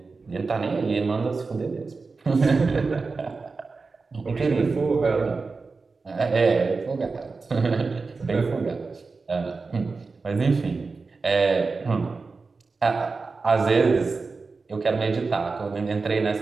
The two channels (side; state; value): left; quieter; 4.2 dB